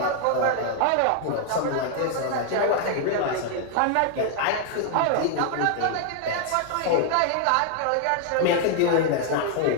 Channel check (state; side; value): different; both; correlation 0.00